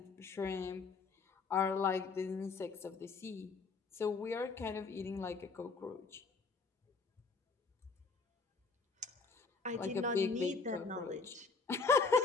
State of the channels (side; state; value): right; quieter; 4.5 dB